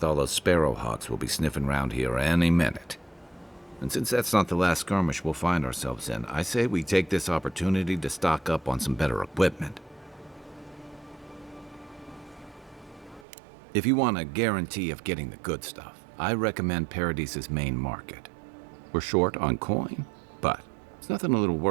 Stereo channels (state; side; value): drops out; left; at 13.2 s